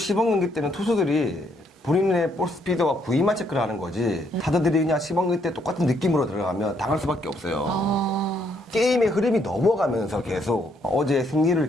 경기 때는 투수들이 본인의 볼 스피드와 구위만 체크를 하는 거지 타자들이 그냥 시범 경기 때 똑같은 느낌으로 들어가면 당할 수밖에 없어요. 게임의 흐름이 넘어가면서 계속 어제 승리를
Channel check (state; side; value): normal; both; correlation 0.71